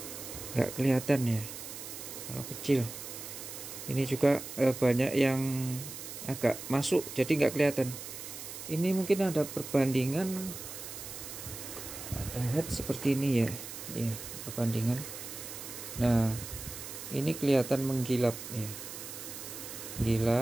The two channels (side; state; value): right; noise; hiss, 10 dB below the sound